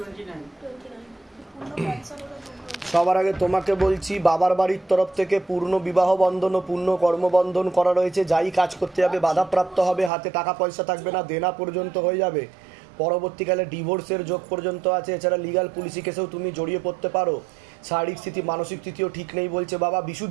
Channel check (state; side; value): drops out; left; at 10.1 s